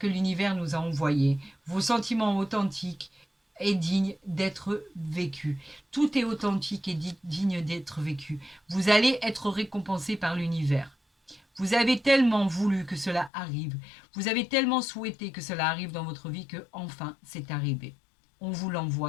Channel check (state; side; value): drops out; right; at 13.3 s